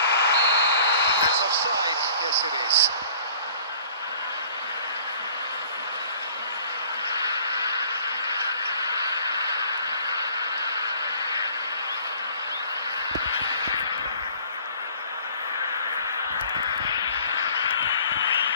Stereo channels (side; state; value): both; inverted; correlation -0.51